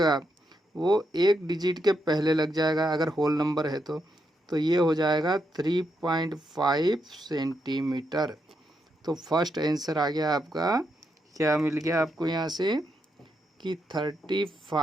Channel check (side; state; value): both; normal; correlation 0.81